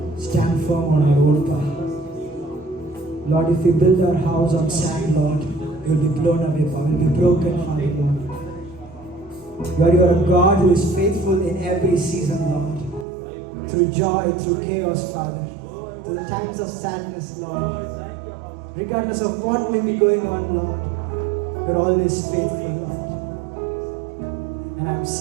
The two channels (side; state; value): left; drops out; at 13.1 s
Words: stand firm on our own power. Lord, if we build our house on sand, Lord, we will be blown away, Father. We will be broken, Father, Lord. Lord, you are a God who is faithful in every season, Lord. Through joy, through chaos, Father. Through the times of sadness, Lord. Regardless of what may be going on, Lord, you're always faithful, Lord. And I'm